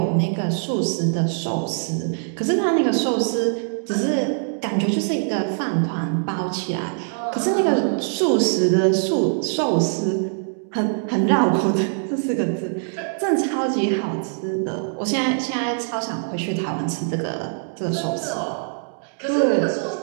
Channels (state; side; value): silent; left; digital silence